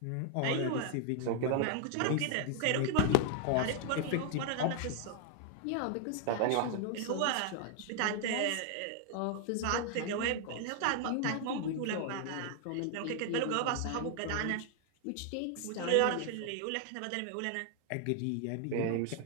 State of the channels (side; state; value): both; different; correlation 0.00